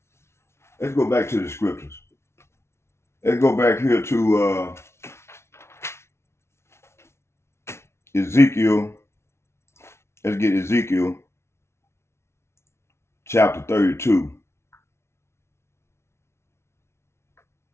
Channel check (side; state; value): right; late; 0.13 ms